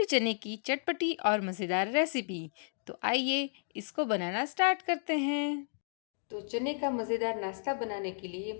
चने की चटपटी और मज़ेदार रेसिपी। तो आइए इसको बनाना स्टार्ट करते हैं। तो चने का मज़ेदार नाश्ता बनाने के लिए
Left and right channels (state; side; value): silent; right; digital silence